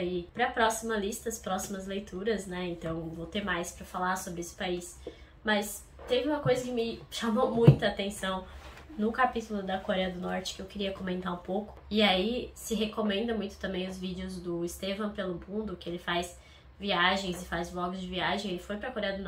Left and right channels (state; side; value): identical; both; correlation 1.00